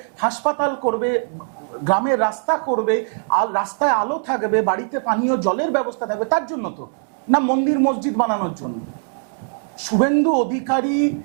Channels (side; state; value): left; silent; digital silence